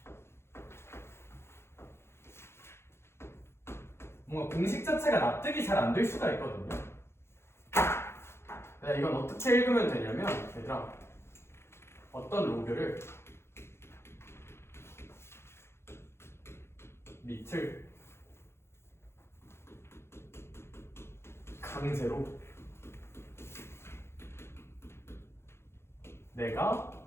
뭔가 공식 자체가 납득이 잘 안 될 수가 있거든요. 이건 어떻게 읽으면 되냐면, 얘들아, 어떤 로그를 밑을 강제로 내가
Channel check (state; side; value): late; right; 0.12 ms